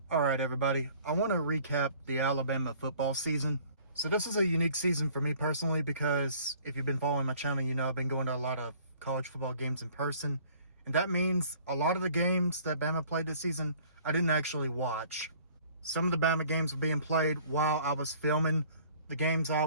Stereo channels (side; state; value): both; inverted; correlation -0.53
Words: All right, everybody. I want to recap the Alabama football season. So this is a unique season for me personally because if you've been following my channel, you know I've been going to a lot of college football games in person. And that means a lot of the games that Bama played this season, I didn't actually watch. Some of the Bama games were being played while I was filming the games I